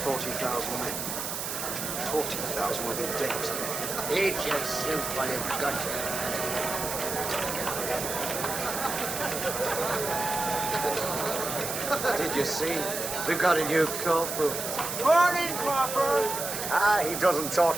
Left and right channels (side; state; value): right; noise; hiss, 4 dB below the sound